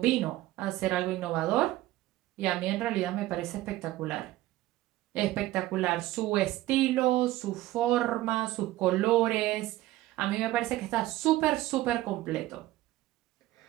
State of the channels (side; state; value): left; quieter; 16.2 dB